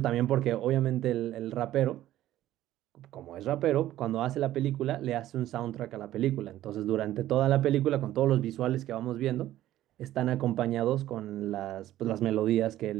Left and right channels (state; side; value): quieter; left; 13.8 dB